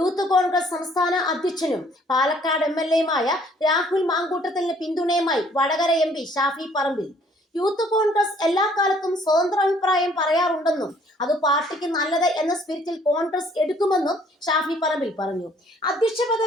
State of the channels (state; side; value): normal; both; correlation 0.60